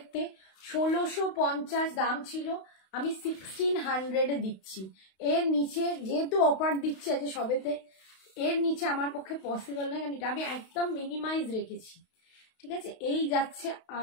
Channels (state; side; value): late; right; 32 ms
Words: 1650 দাম ছিল, আমি 1600-এ দিচ্ছি। এর নিচে যেহেতু অফার দিচ্ছে আছে সবেতে, এর নিচে আমার পক্ষে পসিবল নয়, কারণ এটা আমি একদম মিনিমাইজ রেখেছি, ঠিক আছে। এই যাচ্ছে